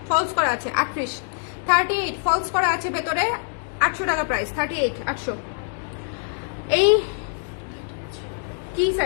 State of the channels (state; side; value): silent; right; 62 dB below the other